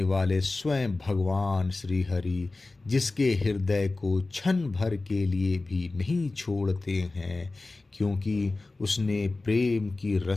वाले स्वयं भगवान श्री हरि, जिसके हृदय को क्षण भर के लिए भी नहीं छोड़ते हैं, क्योंकि उसने प्रेम की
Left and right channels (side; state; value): right; quieter; 3.3 dB